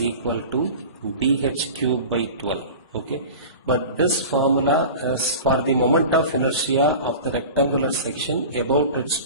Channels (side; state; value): both; inverted; correlation -0.35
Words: equal to bh cube by 12. Okay. But this formula is for the moment of inertia of the rectangular section about its